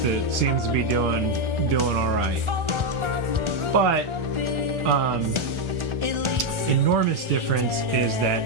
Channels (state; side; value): late; left; 1.4 ms